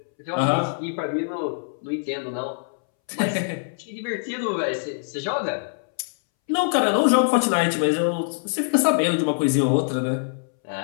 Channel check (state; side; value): silent; right; 63 dB below the other